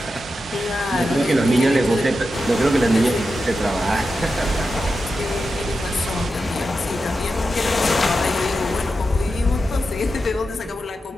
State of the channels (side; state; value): both; normal; correlation 0.89